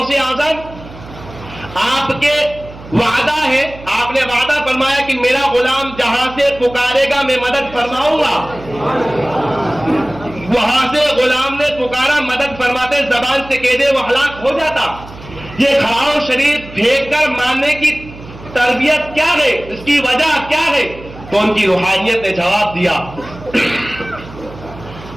اعظم آپ کے وعدہ ہے، آپ نے وعدہ فرمایا کہ میرا غلام جہاں سے پکارے گا میں مدد فرماؤں گا. وہاں سے غلام نے پکارا، مدد فرماتے زبان سے کہہ دے وہ ہلاک ہو جاتا. یہ کھڑاؤ شریف پھینک کر ماننے کی تربیت کیا ہے، اس کی وجہ کیا ہے؟ تو ان کی روحانیت نے جواب دیا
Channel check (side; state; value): right; noise; hum, 17 dB below the sound